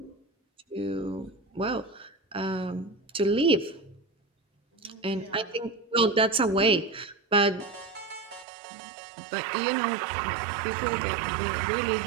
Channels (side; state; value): left; drops out; at 8.5 s